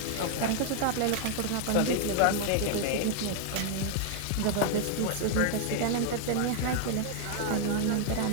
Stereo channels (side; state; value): both; different; correlation 0.00